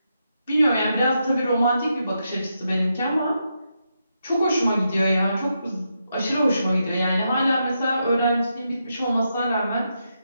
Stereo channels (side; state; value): both; inverted; correlation -0.84